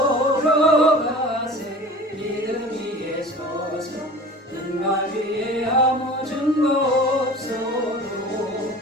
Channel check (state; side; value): normal; both; correlation 0.40